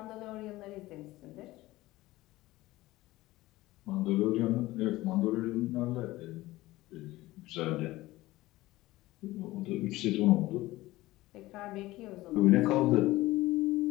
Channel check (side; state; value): right; quieter; 18.0 dB